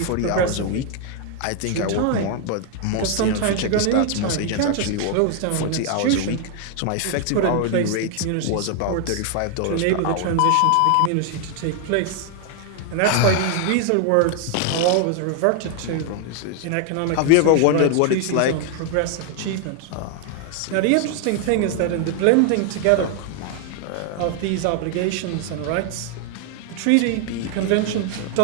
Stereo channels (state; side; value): different; both; correlation 0.00